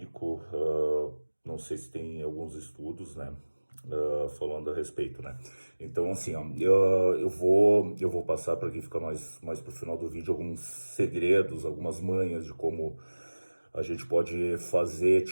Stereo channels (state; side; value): inverted; both; correlation -1.00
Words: não sei se tem alguns estudos, né, falando a respeito, né. Então, assim, ó, eu vou passar para quem fica mais pro final do vídeo alguns segredos, algumas manhas de como a gente pode fazer